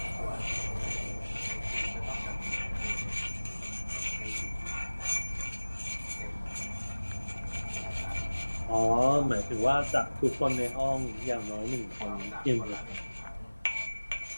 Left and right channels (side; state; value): both; inverted; correlation -1.00